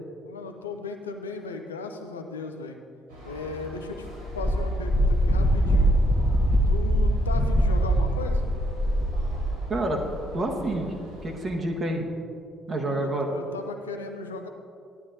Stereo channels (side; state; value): both; normal; correlation 0.73